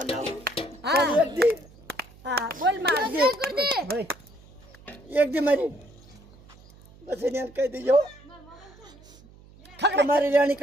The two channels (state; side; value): noise; right; hum, 24 dB below the sound